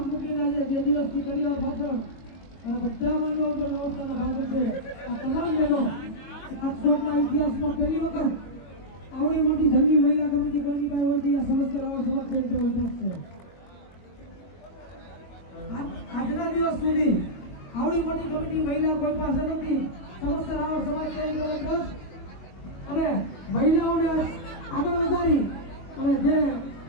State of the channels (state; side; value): late; right; 22 ms